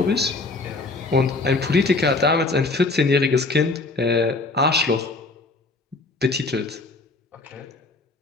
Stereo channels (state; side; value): quieter; right; 3.4 dB